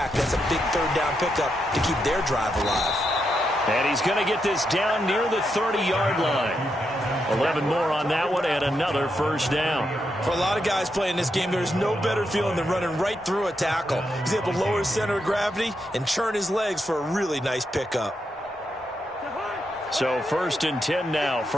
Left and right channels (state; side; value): normal; both; correlation 0.83